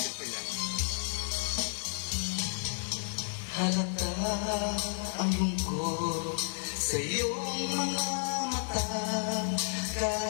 ko yan. Halata ang lungkot sa iyong mga mata,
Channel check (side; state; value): right; silent; 56 dB below the other